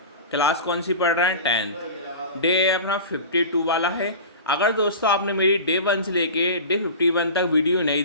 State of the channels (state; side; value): inverted; both; correlation -0.34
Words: क्लास कौन सी पढ़ रहे हैं? 10th। डे अपना 52 वाला है। अगर दोस्तों आपने मेरी डे 1 से लेके डे 51 तक वीडियो नहीं